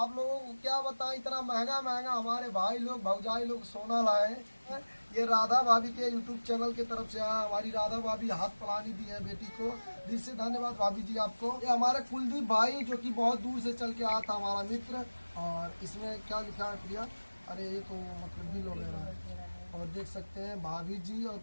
लोगों को क्या बताएं, इतना महंगा महंगा हमारे भाई लोग भौजाई लोग सोना लाए। ये राधा भाभी के यूट्यूब चैनल की तरफ से हमारी राधा भाभी हाथ पलानी दी है बेटी को, दिल से धन्यवाद भाभी जी आपको। ये हमारे कुलदीप भाई जो कि बहुत दूर से चल के आया था, हमारा मित्र। और इसमें क्या लिखा है प्रिया, अरे ये तो मतलब बिल वगैरह है। और देख सकते हैं भाभी जी और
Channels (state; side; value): inverted; both; correlation -1.00